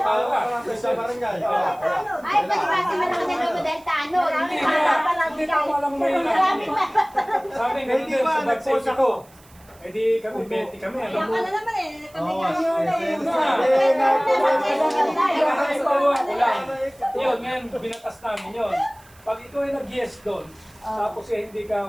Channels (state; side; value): noise; right; hiss, 27 dB below the sound